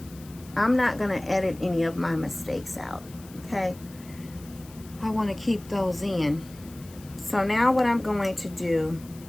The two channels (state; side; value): noise; left; hiss, 21 dB below the sound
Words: I'm not going to edit any of my mistakes out, okay? I want to keep those in. So now what I'm going to do,